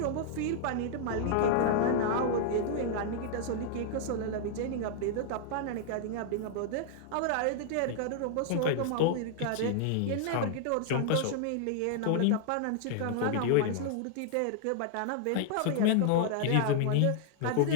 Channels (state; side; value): different; both; correlation -0.01